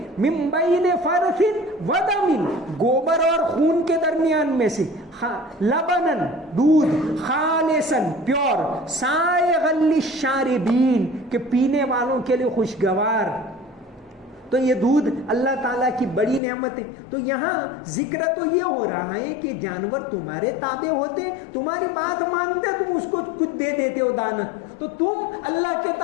من بین فرث و دم، گوبر اور خون کے درمیان میں سے، لبنن دودھ، خالصا پیور، سائغا للشاربین کہ پینے والوں کے لیے خوشگوار۔ تو یہ دودھ اللہ تعالیٰ کی بڑی نعمت ہے۔ تو یہاں ذکر تو یہ ہو رہا ہے کہ جانور تمہارے تابع ہوتے، تمہاری بات مانتے، تم اس کو کچھ دے دیتے ہو دانا، تو تم اللہ کے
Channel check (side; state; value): right; drops out; at 16.4 s